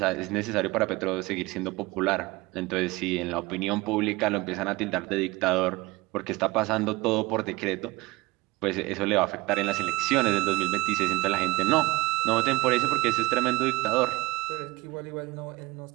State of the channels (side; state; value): left; quieter; 21.3 dB